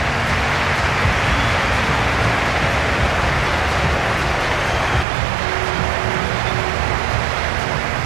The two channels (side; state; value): left; drops out; at 5.1 s